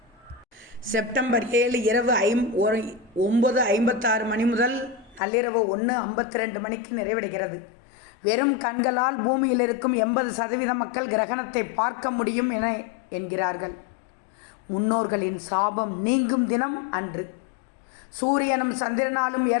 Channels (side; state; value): right; drops out; at 5.2 s